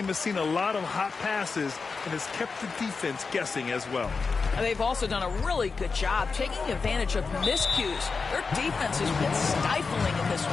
has seen a lot of hot passes and has kept the defense guessing as well. And they've also done a really good job taking advantage of miscues. Their defense has been stifling in this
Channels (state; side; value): quieter; right; 4.7 dB